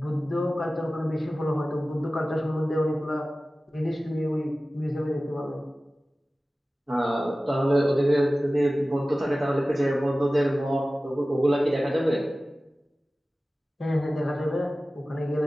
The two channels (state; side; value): normal; both; correlation 0.96